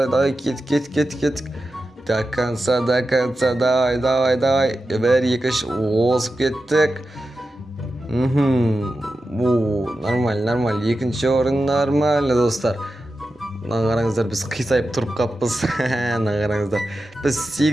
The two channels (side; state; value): both; normal; correlation 0.91